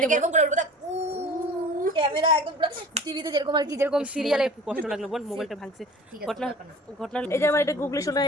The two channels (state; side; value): normal; both; correlation 0.43